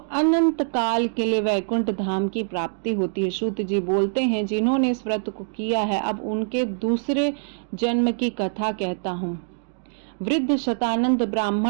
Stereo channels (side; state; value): left; silent; digital silence